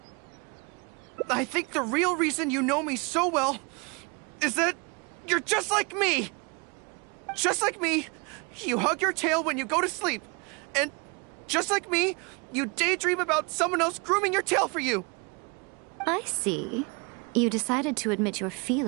I think the real reason you know me so well is that you're just like me. Just like me, you hug your tail when you go to sleep. And just like me, you daydream about someone else grooming your tail for you. I see. You decided to admit your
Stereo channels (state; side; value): quieter; left; 30.9 dB